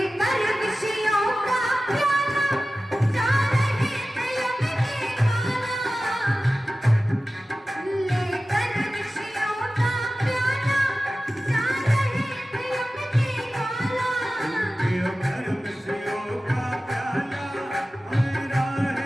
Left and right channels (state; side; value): normal; both; correlation 0.96